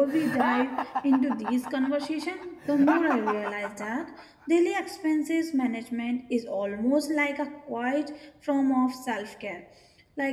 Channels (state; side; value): identical; both; correlation 1.00